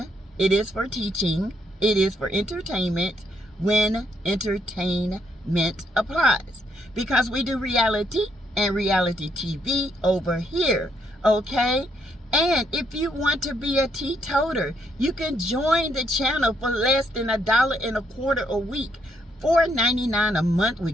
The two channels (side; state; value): both; normal; correlation 0.74